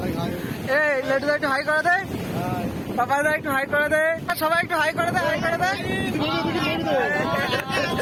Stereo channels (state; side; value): identical; both; correlation 1.00